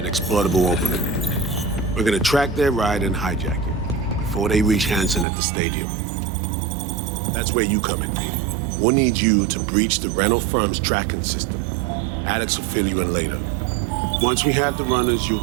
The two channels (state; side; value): drops out; left; at 5.2 s